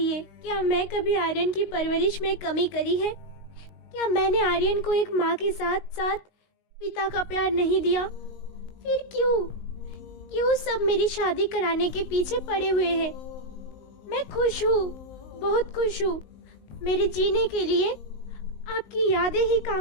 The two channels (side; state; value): right; late; 19 ms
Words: क्या मैं कभी आर्यन की परवरिश में कमी करी है? क्या मैंने आर्यन को एक माँ के साथ साथ पिता का प्यार नहीं दिया? फिर क्यों सब मेरी शादी कराने के पीछे पड़े हुए हैं? मैं खुश हूँ, बहुत खुश हूँ। मेरे जीने के लिए आपकी यादें ही